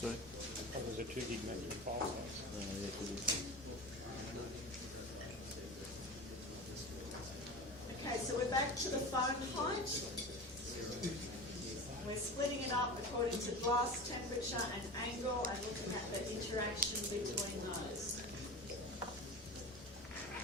Oh, there's a 2 gig maximum file size. Okay, so we're back to the foam height. We're splitting it up according to glass temperature and angle and looking at the interaction between those.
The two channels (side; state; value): both; normal; correlation 0.30